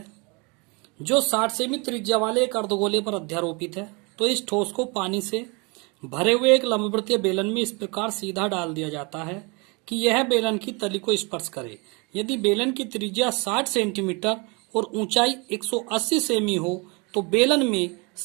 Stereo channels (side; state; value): left; quieter; 29.7 dB